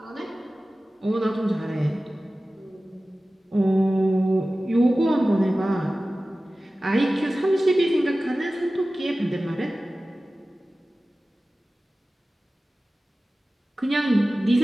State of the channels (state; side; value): normal; both; correlation 0.96